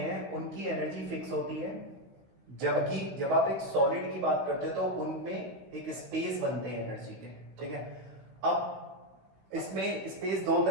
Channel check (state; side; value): late; left; 16 ms